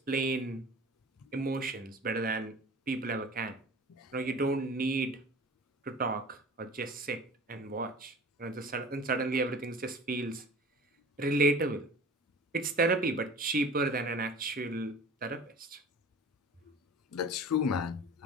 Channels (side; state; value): both; normal; correlation 0.41